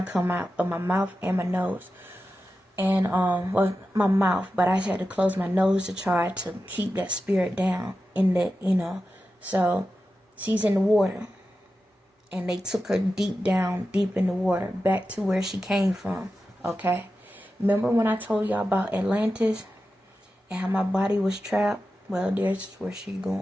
to come out of my mouth and my nose. And, my mouth. But I had to close my nose to try to keep that spirit down in that, So she's in the water. And they took her deep in the water, back to where she came from. Okay? Remember when I told y'all about Atlantis and how my body was trapped? Well, there's where she's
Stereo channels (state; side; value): normal; both; correlation 0.92